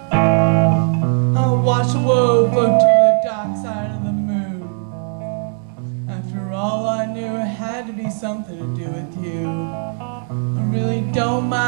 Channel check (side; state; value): left; silent; 57 dB below the other